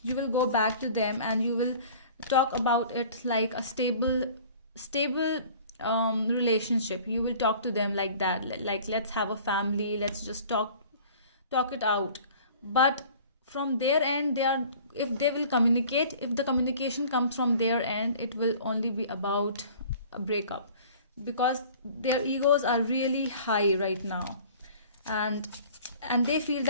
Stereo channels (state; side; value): inverted; both; correlation -0.47